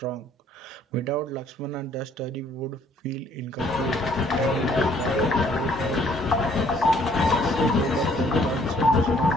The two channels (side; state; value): both; normal; correlation 0.62